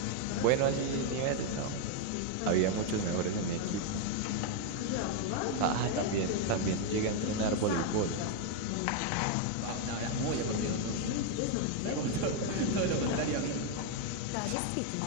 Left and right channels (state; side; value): different; both; correlation 0.01